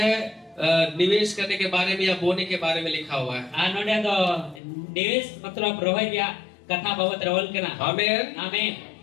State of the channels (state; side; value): drops out; right; at 4.6 s